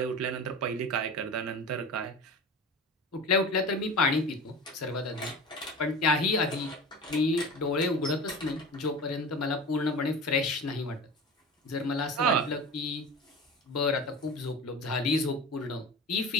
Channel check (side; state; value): both; normal; correlation 0.33